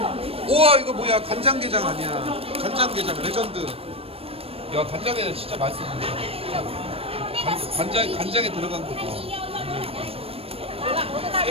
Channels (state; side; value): late; left; 0.28 ms